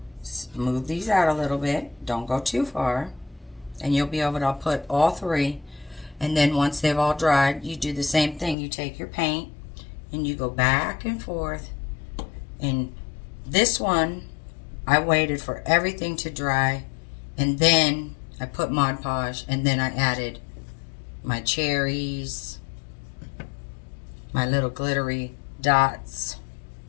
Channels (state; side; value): drops out; right; at 8.6 s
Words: move these out a little bit. Don't go too far. And you'll be able to put all 3. And then once they've all dried, you do the same thing. You take your paint and you go back and forth. And this one, I waited for everything to dry. And then I put Mod Podge. And then I added my cherries, my little glittery dots,